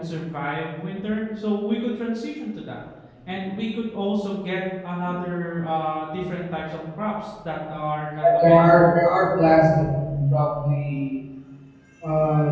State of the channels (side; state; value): both; identical; correlation 1.00